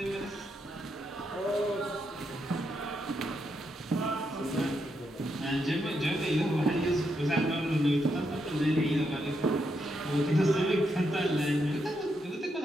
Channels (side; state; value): both; normal; correlation 0.81